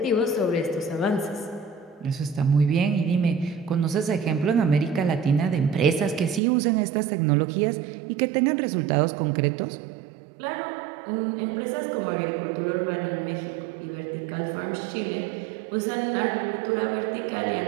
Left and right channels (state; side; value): drops out; left; at 6.4 s